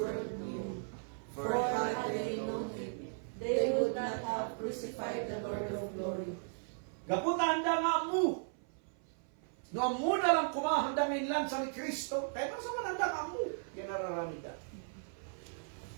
knew, for had they known him, they would not have crucified the Lord of glory. Gaputan da nga mu. No amu na lang kumahanda ngayon lang sa ni Kristo. Kaya pa sa mananda nga mu. Yan nararamid ka.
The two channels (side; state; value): left; silent; 54 dB below the other